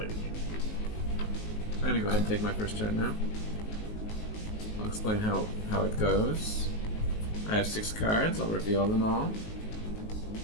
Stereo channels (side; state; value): right; late; 19 ms